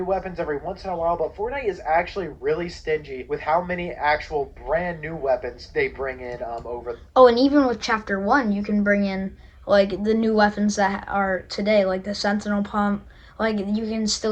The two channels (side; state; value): both; identical; correlation 1.00